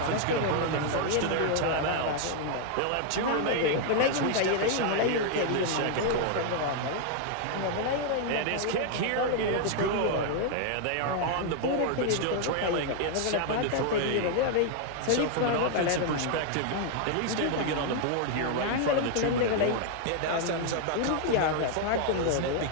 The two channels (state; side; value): different; both; correlation 0.00